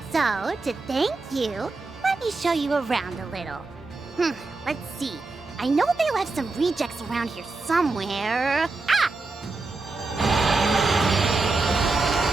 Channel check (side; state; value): left; quieter; 3.6 dB